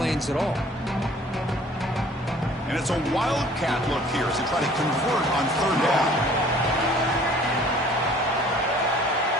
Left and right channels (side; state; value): both; normal; correlation 0.53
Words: at all. And it's a wildcat look here as they try to convert on third down.